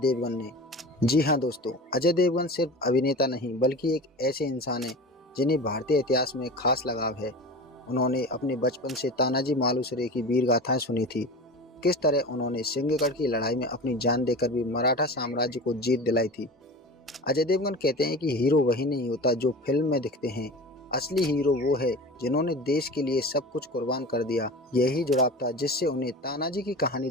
ने। जी हाँ दोस्तों, अजय देवगन सिर्फ अभिनेता नहीं बल्कि एक ऐसे इंसान है जिन्हें भारतीय इतिहास में खास लगाव है। उन्होंने अपने बचपन से तानाजी मालुसरे की वीर गाथाएं सुनी थी। किस तरह उन्होंने सिंहगढ़ की लड़ाई में अपनी जान देकर भी मराठा साम्राज्य को जीत दिलाई थी। अजय देवगन कहते हैं कि हीरो वही नहीं होता जो फिल्म में दिखते हैं, असली हीरो वो है जिन्होंने देश के लिए सब कुछ कुर्बान कर दिया। यही जुड़ाव था जिससे उन्हें तानाजी की कहानी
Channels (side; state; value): both; normal; correlation 0.33